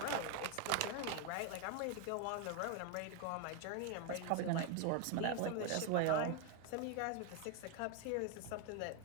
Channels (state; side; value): different; both; correlation 0.01